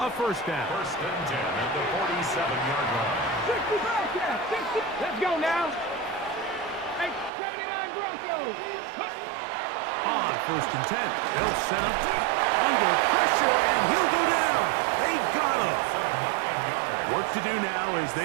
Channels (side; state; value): left; drops out; at 7.3 s